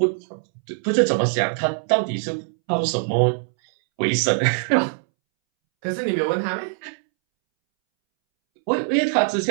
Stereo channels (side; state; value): left; silent; 64 dB below the other